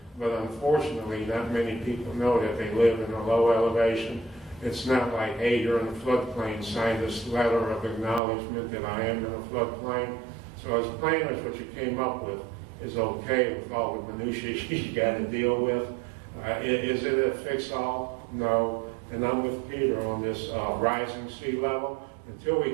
But unfortunately, not many people know that they live in a low elevation. It's not like, hey, you're in a floodplain, sign this letter of acknowledgement that I am in a floodplain. So as planners, what you came up with is okay with all the minutiae you got to deal with. Is it a fix-all? No. And I'm with Peter on this rising sea level. Until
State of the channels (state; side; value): drops out; left; at 8.2 s